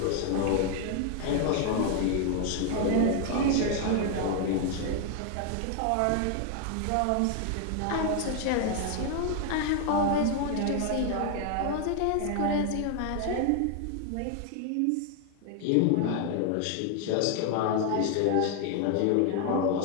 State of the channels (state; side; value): different; both; correlation 0.00